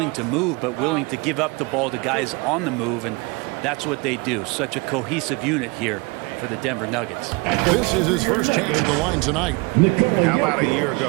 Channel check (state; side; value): quieter; left; 27.1 dB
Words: to move, but willing to give up the ball to guys on the move, and that's what they do. Such a cohesive unit here for the Denver Nuggets. This is his first chance at the line tonight. How about a year